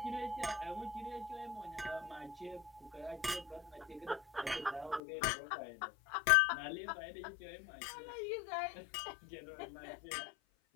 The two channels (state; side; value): drops out; right; at 5.0 s